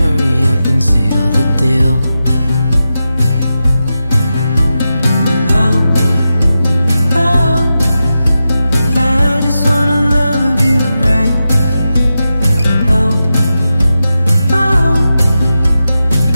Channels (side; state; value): both; inverted; correlation -0.91